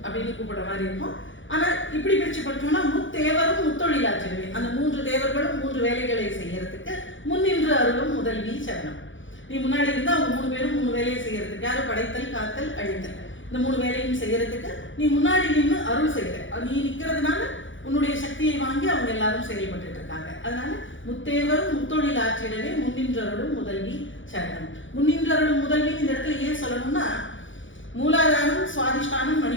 அப்படின்னு கூப்பிடுற மாதிரி இருக்கும். ஆனா இப்படி பிரிச்சு படிச்சோம்னா முத்தேவரும் முத்தொழில் ஆற்றிடவே. அந்த 3 தேவர்களும் 3 வேலைகளை செய்யறதுக்கு முன்னின்று அருளும் முதல்வி சரணம். நீ முன்னாடி இருந்தா அவங்க 3 பேரும் 3 வேலையை செய்யறதுக்கு, யாரும் படைத்தல், காத்தல், அழித்தல், இந்த 3 வேலையும் செய்யறதுக்கு நீ முன்னாடி நின்று அருள் செய்யற. நீ நிக்கிறதுனால உன்னுடைய சக்தியை வாங்கி அவங்க எல்லாரும் செயல்பட்டு இருக்காங்க. அதனால முத்தேவரும் முத்தொழில் ஆற்றிடவே முன்னின்றருளும் முதல்வி சரணம். முன்னின்றருளும் முதல்வி இந்த இடத்துல ஏன் சொல்லணும்னா, மூலாதாரம், சுவாதிஷ்டானம்,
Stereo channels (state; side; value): late; right; 0.56 ms